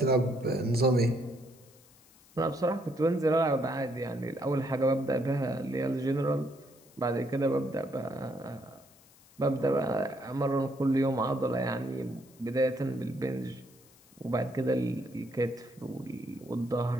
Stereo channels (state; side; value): noise; left; hiss, 27 dB below the sound